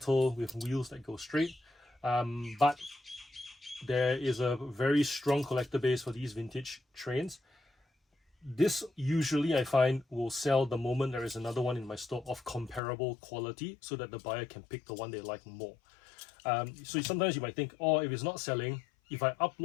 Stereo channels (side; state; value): right; drops out; at 12.8 s